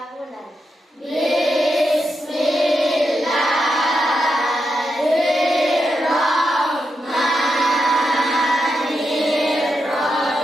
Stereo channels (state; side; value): normal; both; correlation 0.86